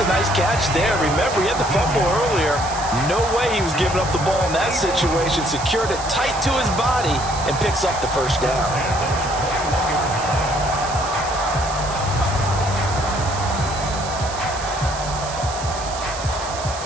nice catch there. Remember, he had the fumble earlier. No way he was giving up the ball in that situation. Secured it tight to his body and picks up the first down.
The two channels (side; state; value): right; noise; hiss, 10 dB below the sound